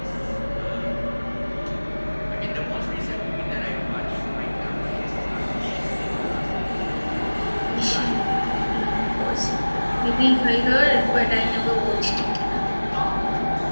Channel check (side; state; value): both; inverted; correlation -1.00